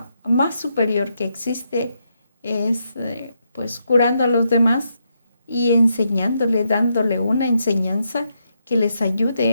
más superior que existe es pues curando a los demás y enseñándole, dándole una enseñanza que les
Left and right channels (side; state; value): both; inverted; correlation -0.80